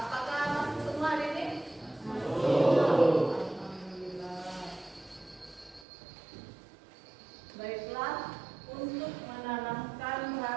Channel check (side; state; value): left; drops out; at 5.9 s